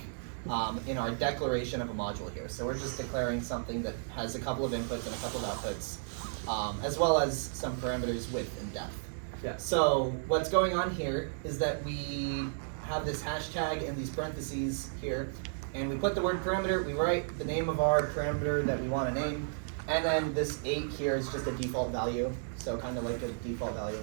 in our declaration of a module here. So we're just declaring something that has a couple of inputs and a couple of outputs, as well as some parameters width and depth. Yeah. So what's going on here is that we have this hashtag and these parentheses here, and we put the word parameter, we write the name of our parameter that we want to name, and then this 8 here is just a default value, so kind of like a default value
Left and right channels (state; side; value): silent; left; digital silence